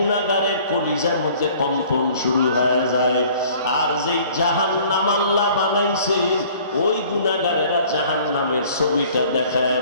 কলিজার মধ্যে কম্পন শুরু হয়ে যায়। আর যেই জাহান্নাম আল্লাহ বানাইছেন, ওই গুনাহগারেরা জাহান্নামের ছবিটা দেখায়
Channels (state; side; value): inverted; both; correlation -0.52